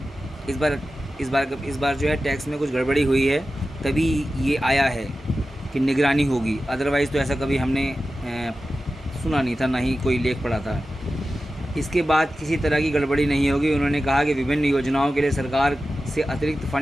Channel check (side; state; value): both; normal; correlation 0.93